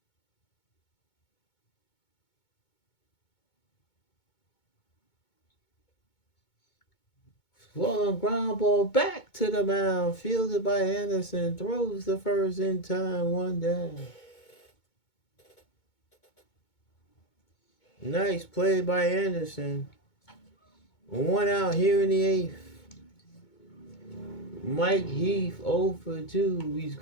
Swung ground ball back to the mound, fielded by Anderson, throws the first in time, 1 down. Nice play by Anderson. 1 out here in the 8th. Mike Heath 0 for 2. He's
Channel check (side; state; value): right; late; 2.2 ms